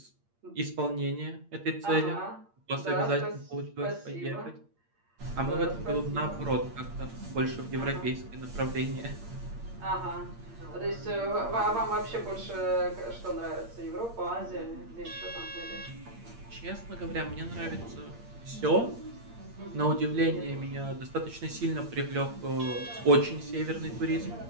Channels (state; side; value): late; left; 8.7 ms